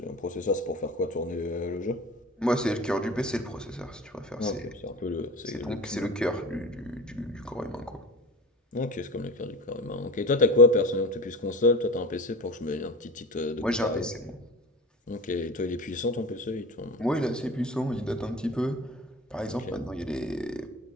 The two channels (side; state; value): both; normal; correlation 0.34